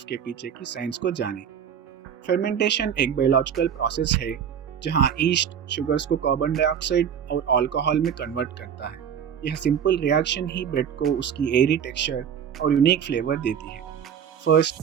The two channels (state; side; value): quieter; left; 8.2 dB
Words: के पीछे की साइंस को जानें। फर्मेंटेशन एक बायोलॉजिकल प्रोसेस है, जहां ईस्ट शुगर्स को कार्बन डाइऑक्साइड और अल्कोहल में कन्वर्ट करता है। यह सिंपल रिएक्शन ही ब्रेड को उसकी एयरी टेक्सचर और यूनिक फ्लेवर देती है। फर्स्ट,